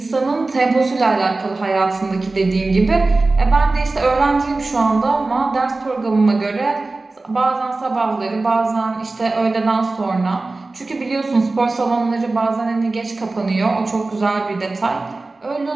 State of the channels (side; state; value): left; quieter; 3.3 dB